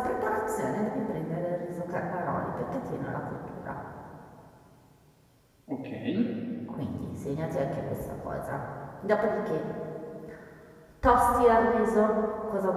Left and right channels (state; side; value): identical; both; correlation 1.00